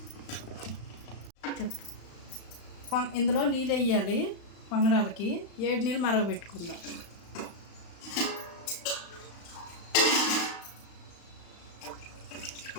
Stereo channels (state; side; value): late; right; 35 ms